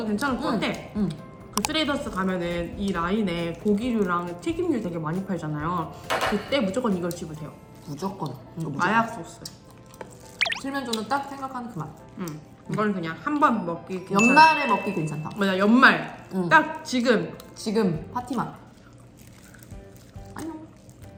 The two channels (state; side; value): identical; both; correlation 1.00